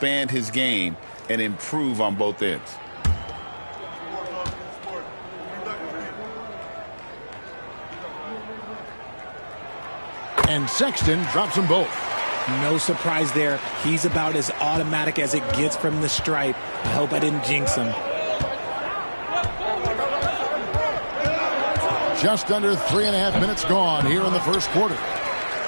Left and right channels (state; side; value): inverted; both; correlation -1.00